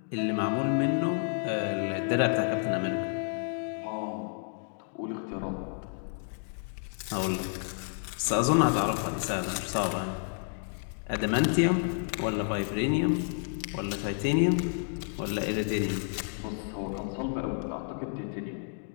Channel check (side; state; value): right; silent; 58 dB below the other